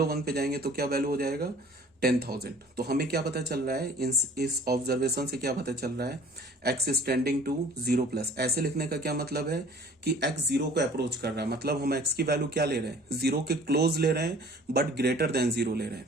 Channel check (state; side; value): normal; both; correlation 0.49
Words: पे जाएंगे तो क्या वैल्यू हो जाएगा 10,000। तो हमें क्या पता चल रहा है, इस ऑब्जर्वेशन से क्या पता चल रहा है, x इज टेंडिंग टू 0+। ऐसे लिखने का क्या मतलब है कि x 0 को अप्रोच कर रहा है, मतलब हम x की वैल्यू क्या ले रहे हैं, 0 के क्लोज ले रहे हैं बट ग्रेटर देन 0 ले रहे हैं।